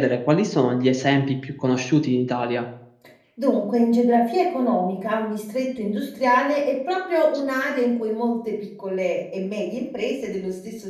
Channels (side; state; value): both; identical; correlation 1.00